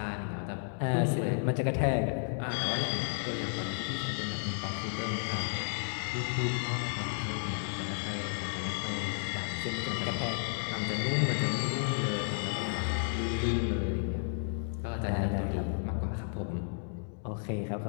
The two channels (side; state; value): right; silent; digital silence